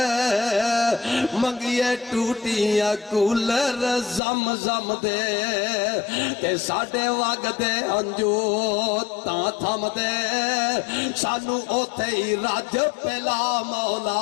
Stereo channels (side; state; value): right; drops out; at 4.2 s